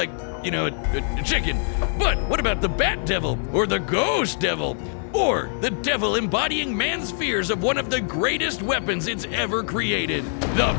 you know, a chicken. But what about the bat devil, or the ghost devil, or the devil embodying man's fears of one of the greatest weapons it's ever created, the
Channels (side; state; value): right; silent; 63 dB below the other